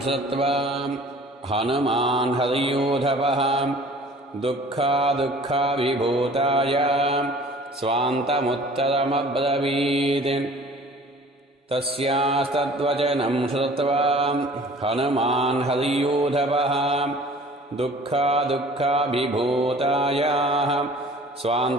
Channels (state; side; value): normal; both; correlation 0.48